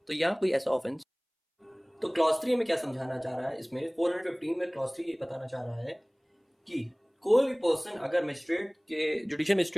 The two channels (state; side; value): identical; both; correlation 1.00